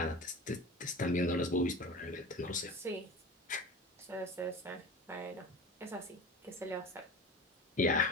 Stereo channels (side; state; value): both; normal; correlation 0.33